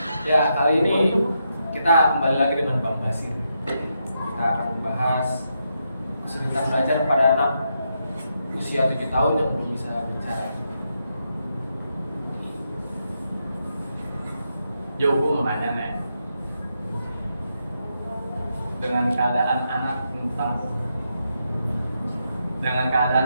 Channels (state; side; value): inverted; both; correlation -0.82